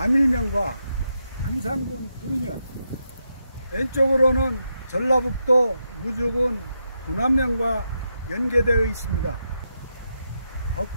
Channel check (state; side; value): inverted; both; correlation -0.84